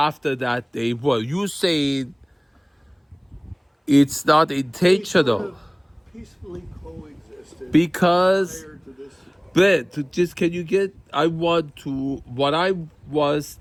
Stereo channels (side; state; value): both; identical; correlation 1.00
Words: that they were. You saying it's not They sort intentional of peacefully coexisted because. prior to this. But can you get? What I was